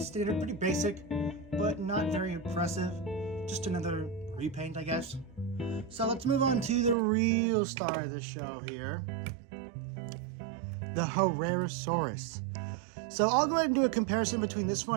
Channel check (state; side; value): drops out; left; at 7.0 s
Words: pretty basic, but not very impressive. Just another repaint, I guess. So let's move on to the real star of the show here, the Herrerasaurus. So I'll go ahead and do a comparison between this